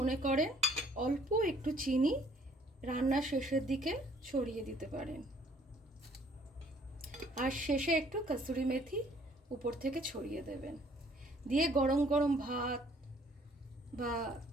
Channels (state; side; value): normal; both; correlation 0.59